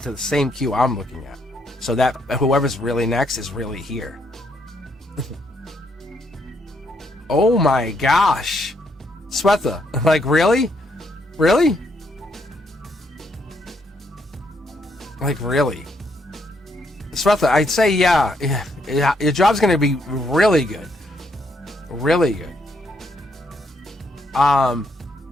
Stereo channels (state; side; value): normal; both; correlation 0.74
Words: the same queue I'm looking at. So that whoever's really next is really here. Oh my gosh. Swetha, like, really? Really? Like, really? Swetha, I'd say, yeah, your job's going to be really good. Really good.